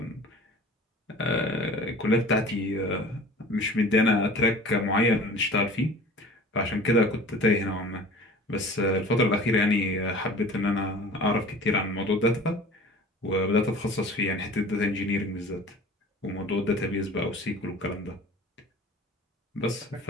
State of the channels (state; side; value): normal; both; correlation 0.43